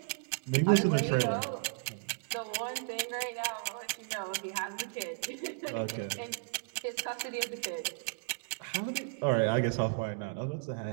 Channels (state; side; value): silent; left; digital silence